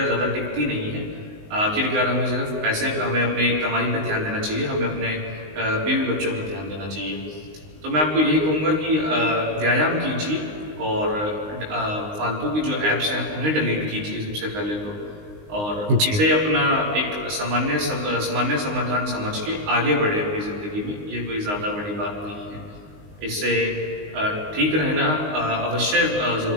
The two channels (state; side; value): late; left; 19 ms